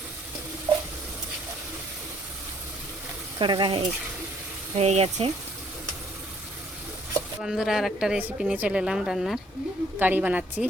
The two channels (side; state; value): both; normal; correlation 0.63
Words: কড়া হয়ে গেছে। বন্ধুরা, আর একটা রেসিপি নিয়ে চলে এলাম রান্নার। কারি বানাচ্ছি।